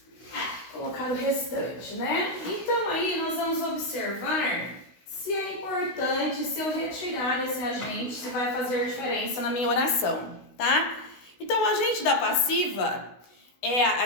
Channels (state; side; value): late; right; 16 ms